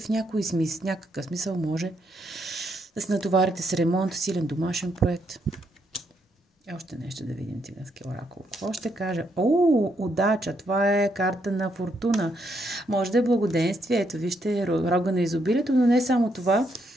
някакъв смисъл може да се натоварите с ремонт, силен домашен проект. Още нещо да видим циганския оракул. Какво ще кажа? Удача! Това е карта на фортуна. Може да е благоденствие. Ето, вижте, рога на изобилието, но не само това.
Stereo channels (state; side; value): normal; both; correlation 0.76